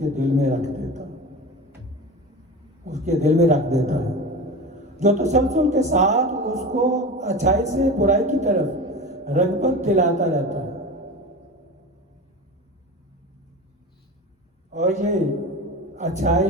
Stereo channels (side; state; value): both; normal; correlation 0.30